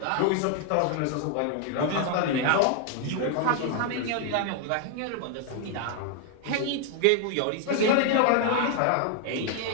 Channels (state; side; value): different; both; correlation 0.00